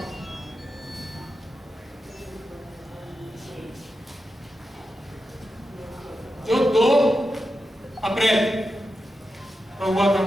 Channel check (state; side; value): normal; both; correlation 0.89